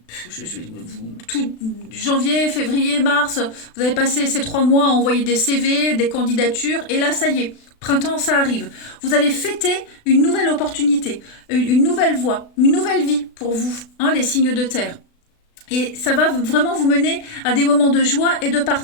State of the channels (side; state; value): right; late; 36 ms